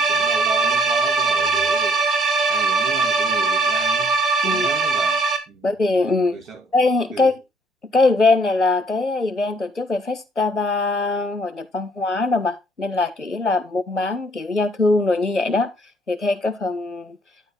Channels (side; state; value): both; normal; correlation 0.62